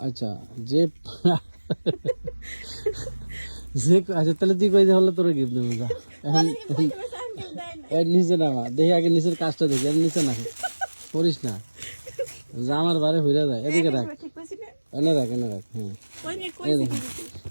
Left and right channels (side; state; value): both; inverted; correlation -1.00